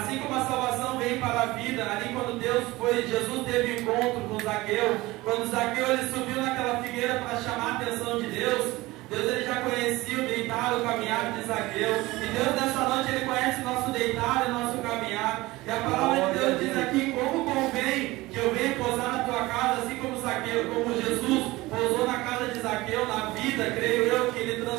como a salvação vem para a vida, ali quando Jesus teve encontro com Zaqueu, quando Zaqueu ele subiu naquela figueira para chamar a atenção de Deus ele já conhecia o deitar, o caminhar de Zaqueu, e Deus nessa noite ele conhece o nosso deitar e o nosso caminhar, e a palavra de Deus diz aqui: como convém que eu venha pousar na tua casa, assim como Zaqueu, como Jesus pousou na casa de Zaqueu, na vida, creio eu, que ele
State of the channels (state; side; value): quieter; left; 19.9 dB